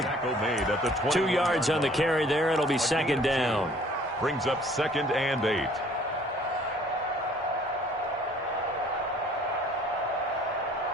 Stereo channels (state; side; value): normal; both; correlation 0.56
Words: 2 yards on the carry there. It'll be 2nd down. Brings up 2nd and 8.